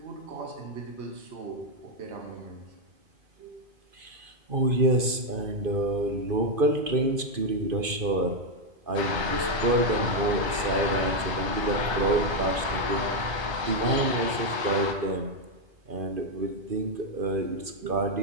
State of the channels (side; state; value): left; late; 2.5 ms